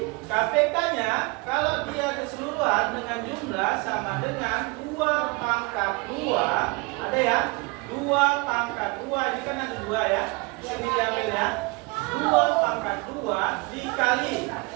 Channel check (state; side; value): quieter; left; 26.9 dB